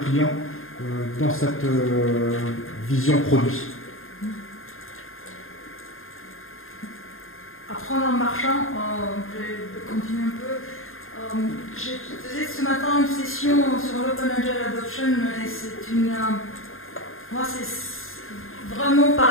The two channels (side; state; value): right; late; 0.61 ms